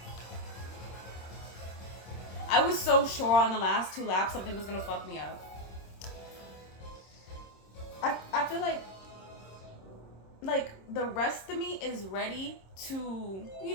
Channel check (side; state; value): right; late; 26 ms